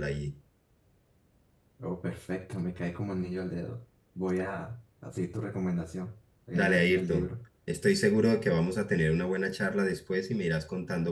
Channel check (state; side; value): identical; both; correlation 1.00